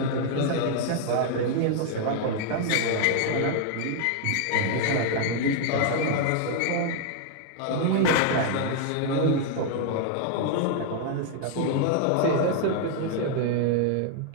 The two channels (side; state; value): both; different; correlation 0.00